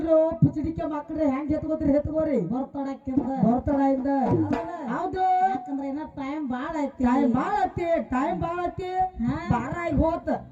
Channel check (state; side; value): identical; both; correlation 1.00